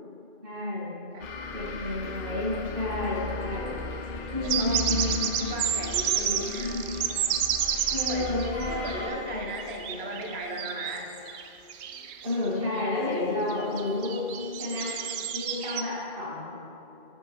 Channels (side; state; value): left; late; 2.3 ms